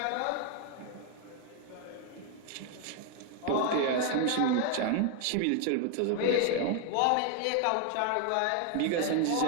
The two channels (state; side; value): different; both; correlation 0.01